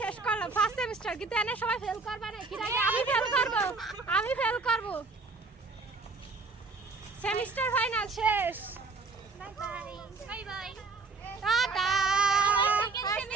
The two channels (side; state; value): left; quieter; 4.0 dB